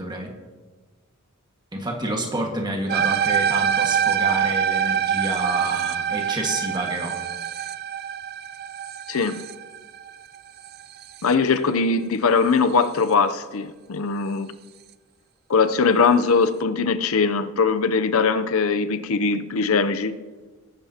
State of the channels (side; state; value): both; normal; correlation 0.02